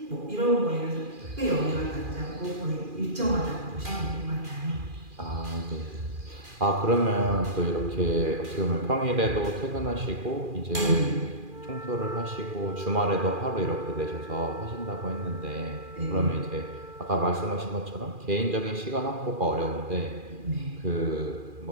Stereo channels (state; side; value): late; left; 2.4 ms